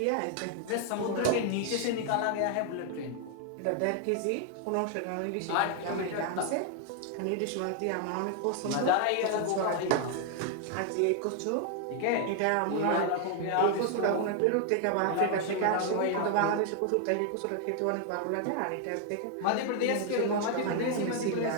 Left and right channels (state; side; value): different; both; correlation 0.00